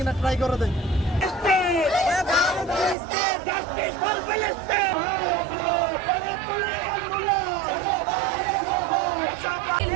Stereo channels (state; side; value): drops out; left; at 3.0 s